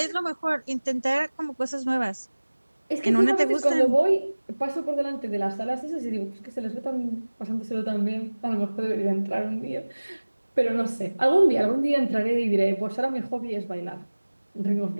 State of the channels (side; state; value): both; inverted; correlation -1.00